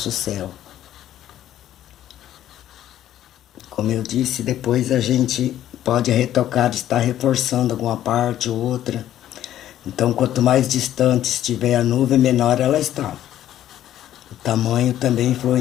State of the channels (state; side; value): quieter; right; 12.1 dB